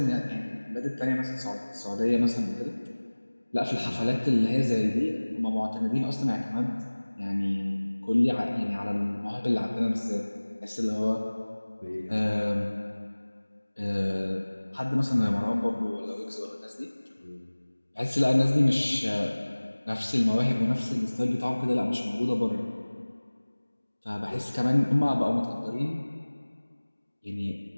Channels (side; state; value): both; inverted; correlation -1.00